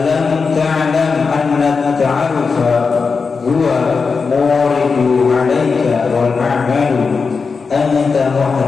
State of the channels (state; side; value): quieter; right; 4.9 dB